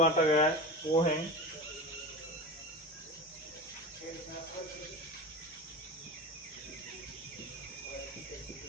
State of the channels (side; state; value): both; normal; correlation 0.29